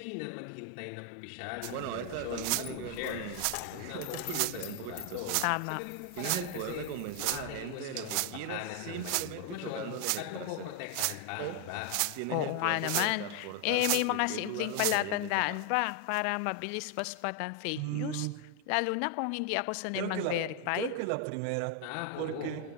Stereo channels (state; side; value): different; both; correlation 0.01